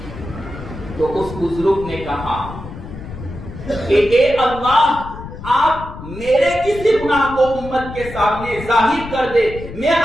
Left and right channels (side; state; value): left; noise; rumble, 12 dB below the sound